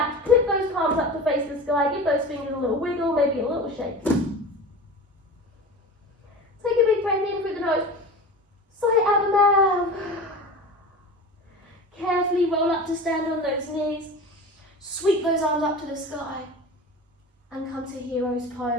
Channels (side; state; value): both; normal; correlation 0.33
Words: clip those palms up to face the sky, give those fingers a little wiggle, maybe a little shake. Take a big breath in through the nose, sigh it out the mouth. Carefully roll up to stand on those knees, sweep those arms up to the sky, and come to hero's